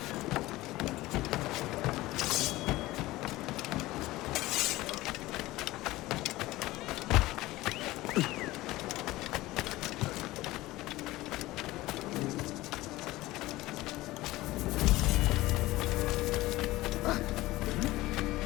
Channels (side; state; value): right; quieter; 18.2 dB